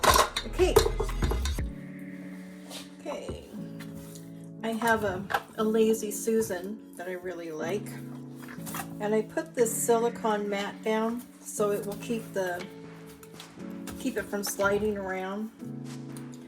the cake. Okay, I have a Lazy Susan that I really like, and I put this silicone mat down so it will keep it from sliding around.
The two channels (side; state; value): both; identical; correlation 1.00